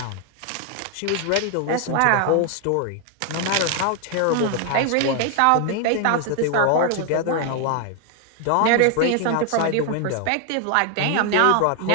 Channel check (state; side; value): different; both; correlation 0.00